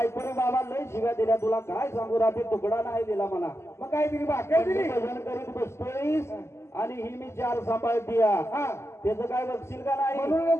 बाबा लय शिव्या दिल्या तुला काय सांगू रात्री तुकडा नाही दिला मला मग काय दिली भाकर दिली भजन करीत बसतोयस आणि ही मी 4 सांभाळती हा त्याचं काय बघशील का नाही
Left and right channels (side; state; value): right; late; 0.13 ms